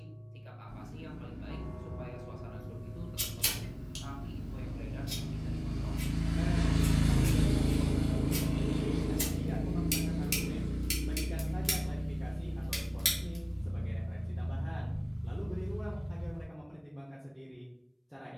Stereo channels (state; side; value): identical; both; correlation 1.00